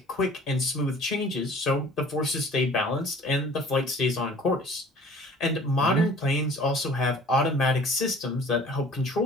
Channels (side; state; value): both; normal; correlation 0.49